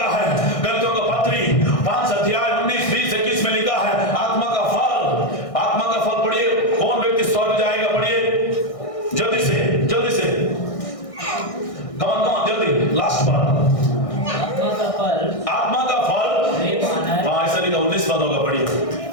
है, गलतियों का पत्री 5 अध्याय 19 20 21 में लिखा है, आत्मा का फल, आत्मा का फल पढ़िए, कौन व्यक्ति स्वर्ग जाएगा, पढ़िए जल्दी से, जल्दी से, कमान जल्दी, लास्ट बार, आत्मा का फल, हाँ ऐसा लिखा 19 पद होगा, पढ़िए।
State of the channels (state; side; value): late; right; 1.6 ms